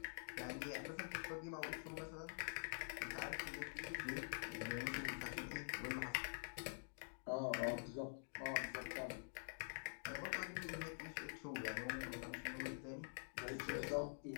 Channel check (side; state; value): right; silent; digital silence